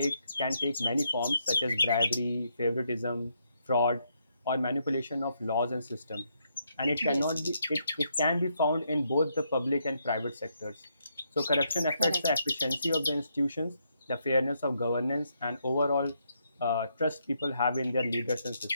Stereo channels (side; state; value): both; inverted; correlation -0.77